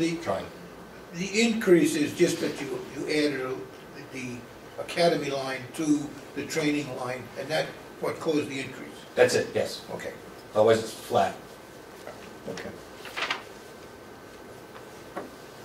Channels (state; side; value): identical; both; correlation 1.00